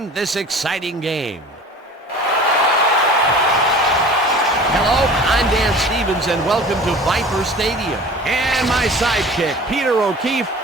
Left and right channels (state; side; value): normal; both; correlation 0.42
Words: this exciting game. Hello, I'm Dan Stevens, and welcome to Viper Stadium. And my sidekick, Peter O'Keefe.